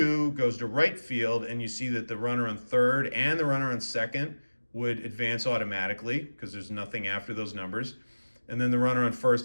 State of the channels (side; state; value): both; inverted; correlation -1.00